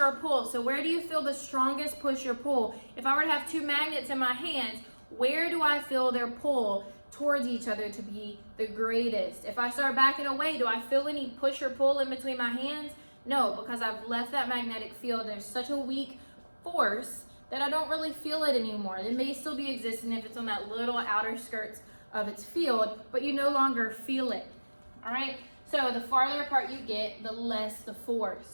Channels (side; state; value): both; inverted; correlation -1.00